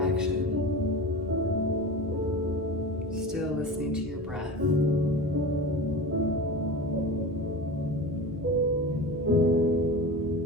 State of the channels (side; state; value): both; normal; correlation 0.30